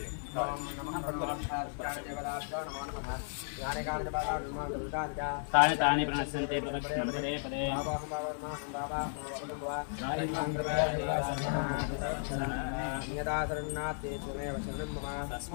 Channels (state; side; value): silent; right; digital silence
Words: ओम नमः भगवत्पाददेवताभ्यो नमो नमः ज्ञानकाल तानि तानि प्रणश्यन्ते प्रदक्षिणं पदे पदे